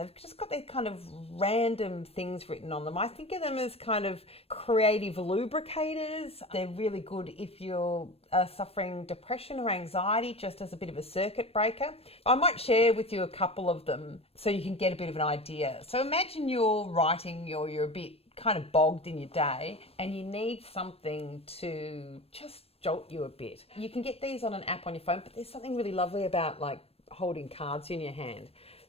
just got these kind of random things written on them. I think of them as kind of creative lubricators. They're really good if you're suffering depression or anxiety, just as a bit of a circuit breaker. I might share with you a couple of them so you can get a bit of an idea. So imagine you're writing or you're a bit kind of bogged in your day and you need something to just jolt you a bit. You can get these on an app on your phone, but there's something really lovely about like holding cards in your hand.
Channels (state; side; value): late; right; 0.28 ms